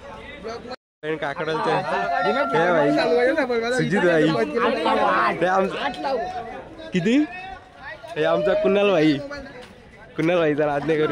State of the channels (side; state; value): both; identical; correlation 1.00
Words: काकडालचे सुजित भाई किती हे आमचा कुणाल भाई जर आज नाही